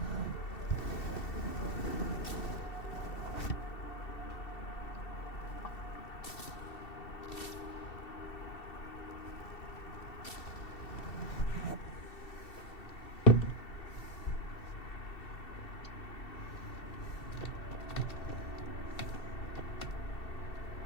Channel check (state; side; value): late; right; 2.7 ms